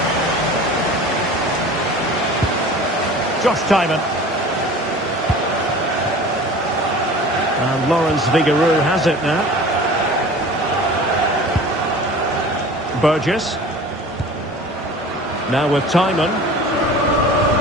Josh Timon. And Lawrence Vigarou has it now. Burgess. Now with Timon.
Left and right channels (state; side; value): normal; both; correlation 0.41